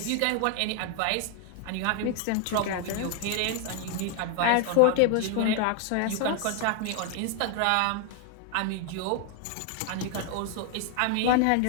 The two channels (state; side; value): different; both; correlation 0.00